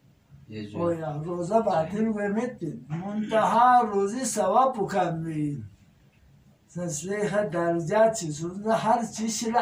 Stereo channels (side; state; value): both; identical; correlation 1.00